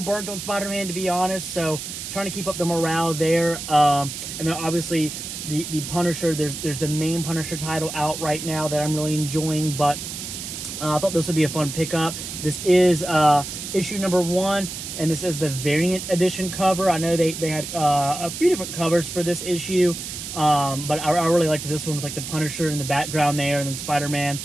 on Spider-Man, to be honest, so trying to keep up the morale there. And then obviously the Punisher, there's the main Punisher title out right now that I'm really enjoying, but I thought this would be a fun pickup. This is issue number 1, and this is the variant edition cover. I know they had a few different covers for this issue, but I really liked this one with like the Punisher in the background there, and then Spider-Man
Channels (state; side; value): noise; right; hiss, 8 dB below the sound